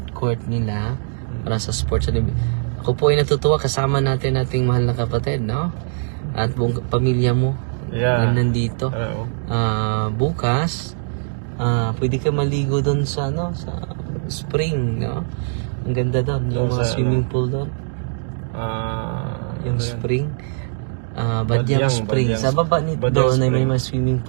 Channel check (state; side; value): silent; left; digital silence